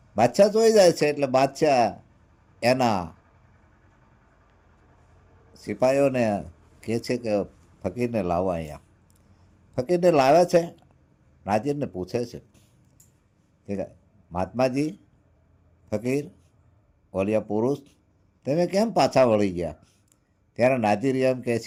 બાદશાહ જોઈ જાય છે એટલે બાદશાહ એના સિપાહીઓને કહે છે કે ફકીરને લાવો અહીંયા. ફકીરને લાવે છે. નાજીરને પૂછે છે કે મહાત્માજી, ફકીર ઓલિયા પુરુષ, તમે કેમ પાછા વળી ગયા? ત્યારે નાજીર એમ કહે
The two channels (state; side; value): identical; both; correlation 1.00